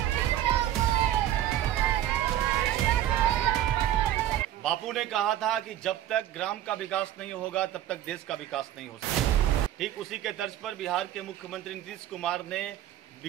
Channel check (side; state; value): left; quieter; 12.2 dB